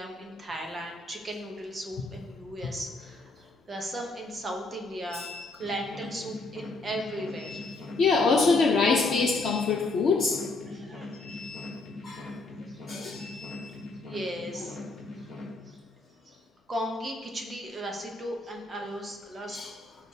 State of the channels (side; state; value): right; quieter; 3.2 dB